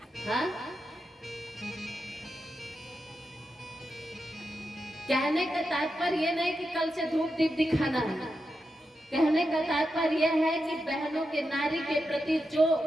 हाँ, कहने का तात्पर्य ये नहीं कि कल से धूप दीप दिखाना है, कहने का तात्पर्य यह है कि बहनों के, नारी के प्रति जो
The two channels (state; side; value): normal; both; correlation 0.88